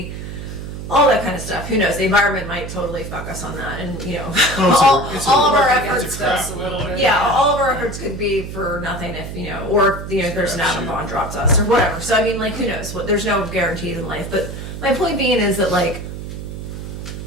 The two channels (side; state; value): right; noise; hum, 8 dB below the sound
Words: all that kind of stuff. Who knows? The environment might totally fuck us on that, and you know, all of our efforts. All of our efforts could be for nothing if you know, or you know, there's an atom bomb dropped us or whatever. So I mean, like, who knows? What there's no guarantees in life. But my point being is that like,